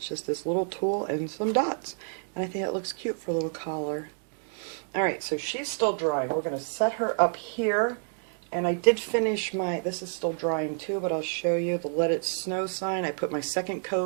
just this little tool and some dots. And I think it looks cute for a little collar. Alright, so she's still drying. We're going to set her up here. And I did finish my, this is still drying too, but I'll show you the Let It Snow sign. I put my second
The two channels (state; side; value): silent; left; digital silence